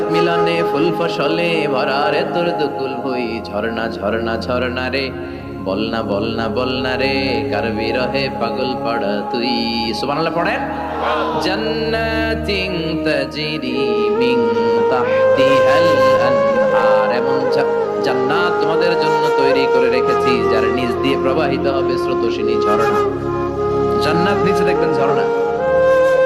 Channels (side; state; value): both; identical; correlation 1.00